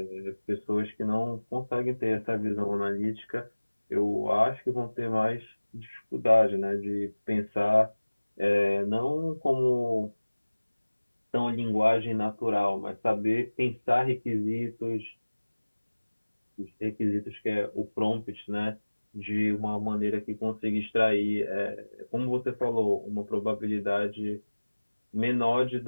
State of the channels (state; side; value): inverted; both; correlation -1.00